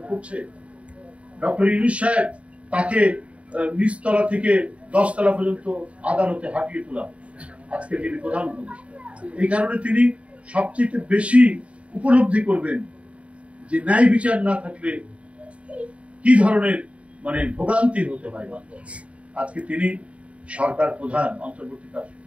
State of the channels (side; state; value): left; late; 0.064 ms